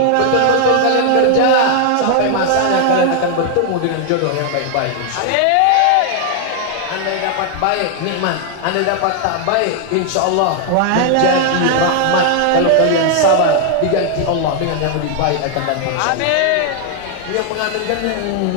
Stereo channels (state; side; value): different; both; correlation 0.00